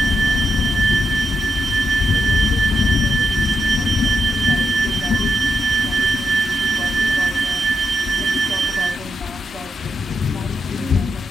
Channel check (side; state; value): both; normal; correlation 0.81